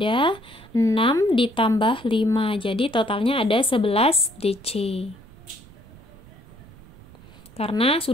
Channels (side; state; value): right; noise; rumble, 22 dB below the sound